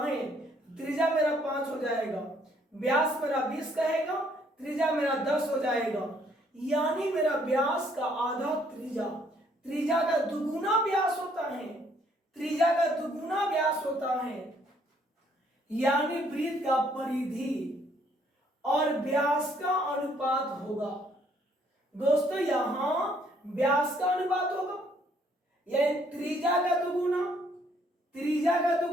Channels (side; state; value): both; normal; correlation 0.66